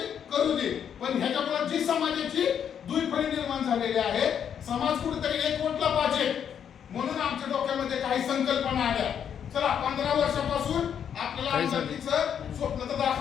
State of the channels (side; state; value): right; quieter; 8.4 dB